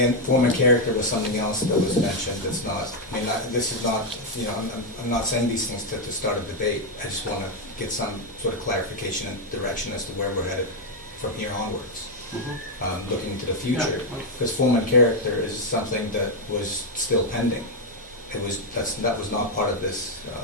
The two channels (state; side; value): normal; both; correlation 0.02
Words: form and character was something else that was mentioned, that's not, this is not, I'm not saying these things to start a debate, I just wanna get some sort of clarification and direction as to where we're headed from here onwards, looking into the future, because form and character is something that was still pending. That was not part of this,